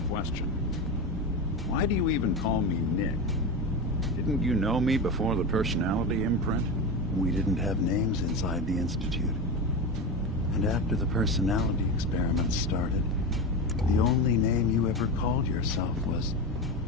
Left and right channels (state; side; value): normal; both; correlation 0.20